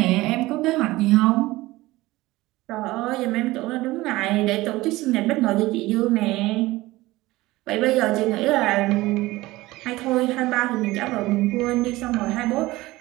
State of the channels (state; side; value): quieter; left; 18.9 dB